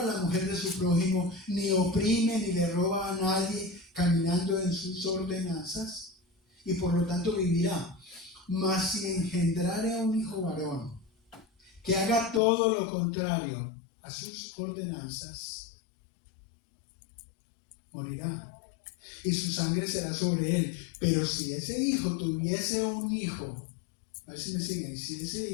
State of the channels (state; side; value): drops out; right; at 12.4 s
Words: a la mujer de su prójimo, ni oprime ni le roba a nadie, caminando en sus ordenanzas, y por lo tanto vivirá. Mas si engendrare a un hijo varón, que haga todo lo contrario a sus ordenanzas, morirá, y su sangre será sobre él. Pero si ese hijo tuviese un hijo, a ver si me siguen, si ese